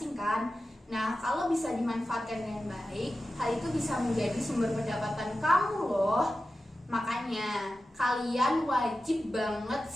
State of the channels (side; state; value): both; normal; correlation 0.93